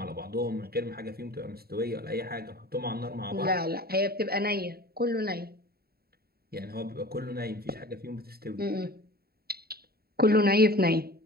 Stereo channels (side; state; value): left; late; 0.45 ms